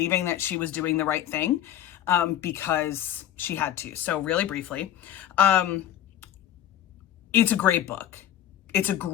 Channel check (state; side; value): quieter; right; 11.3 dB